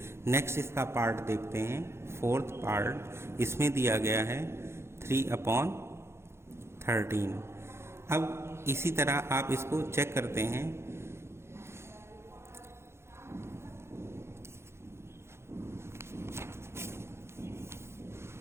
नेक्स्ट इसका पार्ट देखते हैं, फोर्थ पार्ट। इसमें दिया गया है 3/13। अब इसी तरह आप इसको चेक करते हैं।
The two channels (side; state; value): left; late; 0.12 ms